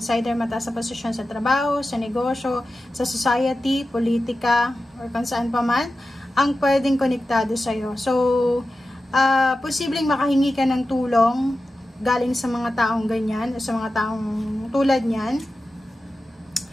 either mataas na posisyon sa trabaho, sa negosyo, sa society, politika, or kung saan pa man ang pwedeng konektado sa'yo. So, posibleng makahingi ka ng tulong galing sa mga taong ganyan, o sa mga taong tulad niyan.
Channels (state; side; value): normal; both; correlation 0.93